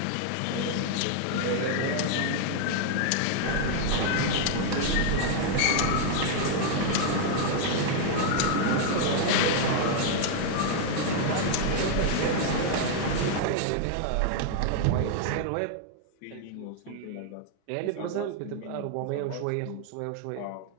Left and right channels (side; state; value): both; different; correlation 0.00